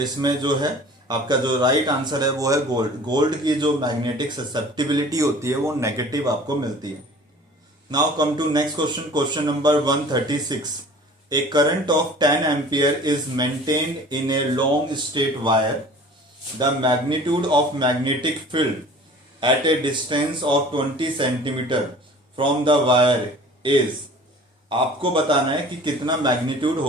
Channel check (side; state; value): both; normal; correlation 0.45